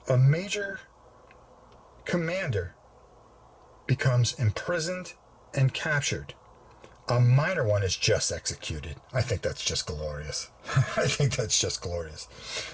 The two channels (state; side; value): identical; both; correlation 1.00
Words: commander becomes imprisoned and captured. A minor one is just executed. I think that's just glorious. I think that's just glorious.